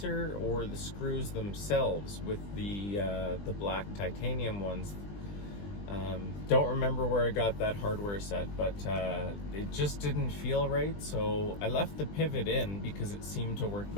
or the screws themselves with the black titanium ones. Don't remember where I got that hardware set, but it just didn't feel right. So I left the pivot in because it seemed to work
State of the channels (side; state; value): right; late; 20 ms